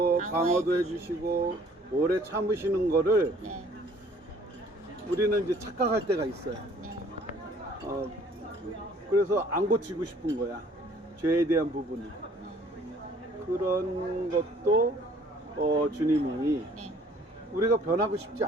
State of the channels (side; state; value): both; normal; correlation 0.57